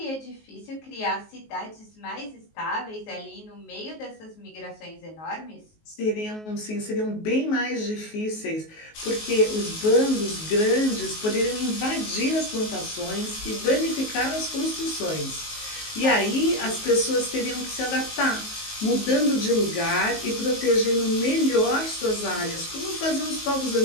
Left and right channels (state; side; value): late; right; 19 ms